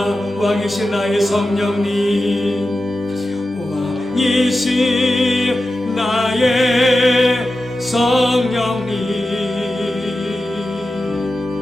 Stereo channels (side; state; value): both; normal; correlation 0.92